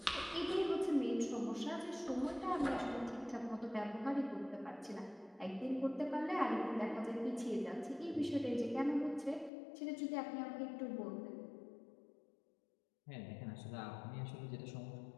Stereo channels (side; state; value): right; drops out; at 9.5 s